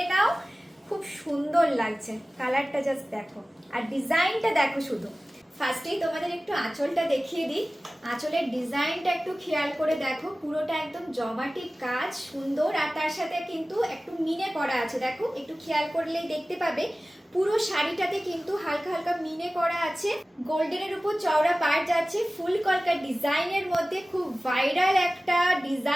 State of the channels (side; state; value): both; normal; correlation 0.97